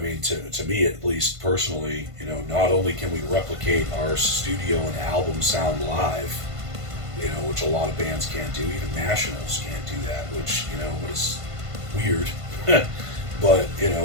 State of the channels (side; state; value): left; late; 1.5 ms